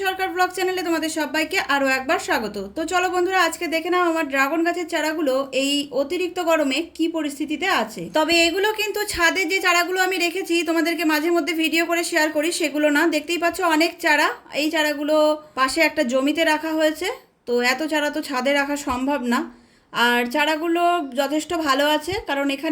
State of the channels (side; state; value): both; identical; correlation 1.00